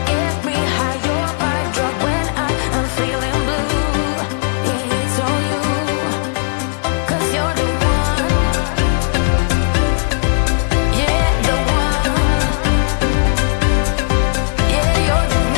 get me high. You're my drug when I am feeling blue. Yeah, it's all you, 'cause you're the one. Yeah, the one. Yeah, you're the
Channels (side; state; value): right; silent; digital silence